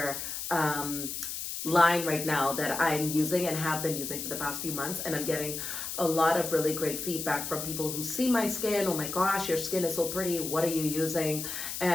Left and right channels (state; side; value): noise; left; hiss, 5 dB below the sound